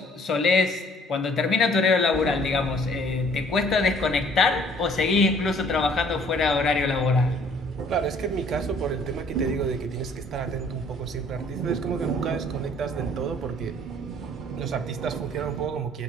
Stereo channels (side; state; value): both; normal; correlation 0.58